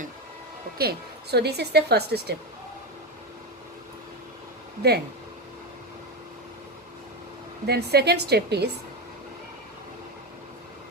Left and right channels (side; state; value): both; normal; correlation 0.14